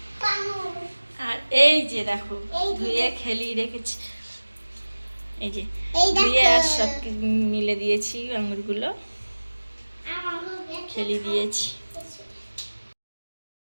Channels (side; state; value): both; inverted; correlation -1.00